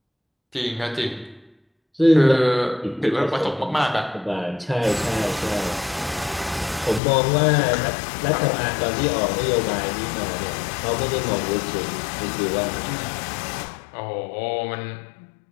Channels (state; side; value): drops out; right; at 7.0 s